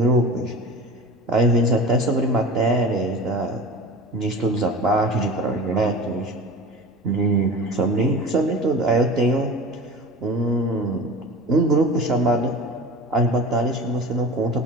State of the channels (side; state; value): both; normal; correlation 0.34